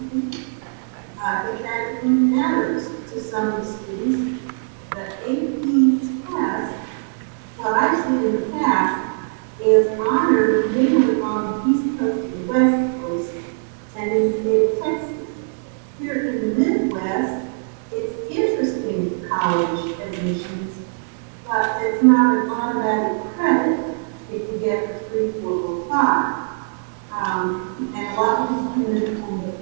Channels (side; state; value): left; silent; digital silence